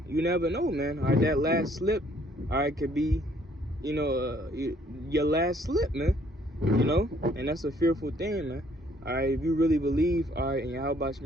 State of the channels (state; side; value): normal; both; correlation 0.63